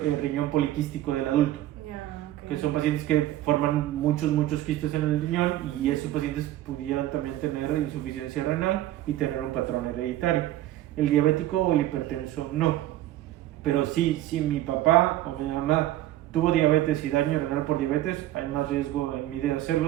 poliquístico del adulto, que son pacientes que forman muchos quistes en el riñón y esos pacientes pudieran también tener insuficiencia renal y tener un patrón hereditario. El diabético o el hipertenso no, pero sí, si mi papá o mi mamá tuvo diabetes y daño renal por diabetes, hay más riesgo en mí de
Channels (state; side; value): quieter; left; 14.2 dB